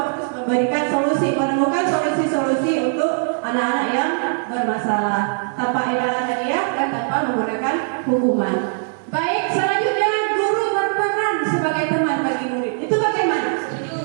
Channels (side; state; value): left; silent; digital silence